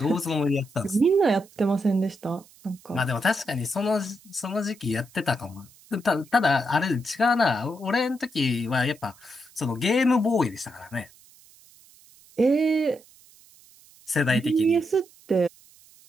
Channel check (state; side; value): noise; right; hiss, 26 dB below the sound